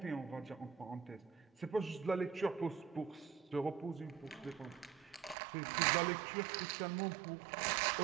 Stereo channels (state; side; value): drops out; left; at 5.4 s